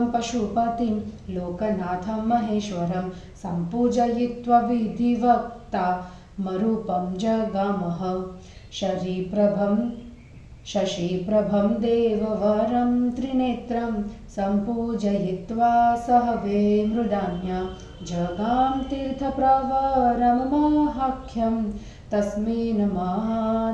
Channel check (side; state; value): both; identical; correlation 1.00